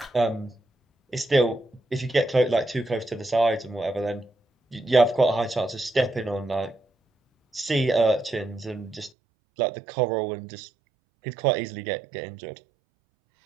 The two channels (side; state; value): left; drops out; at 9.1 s